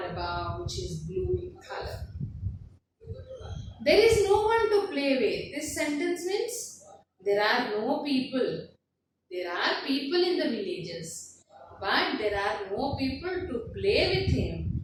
above, which is blue in color. There is no one to play with. This sentence means there are no people. There are people in the villages, but there are no people to play with him.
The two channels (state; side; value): identical; both; correlation 1.00